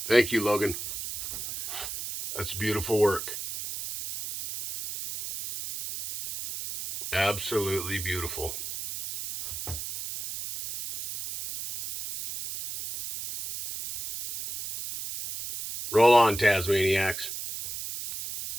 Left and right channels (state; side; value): noise; right; hiss, 7 dB below the sound